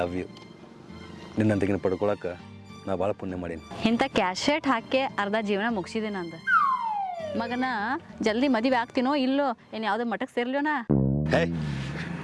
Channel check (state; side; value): identical; both; correlation 1.00